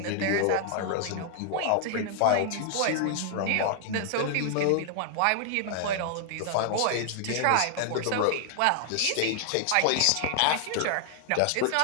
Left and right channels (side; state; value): both; different; correlation -0.01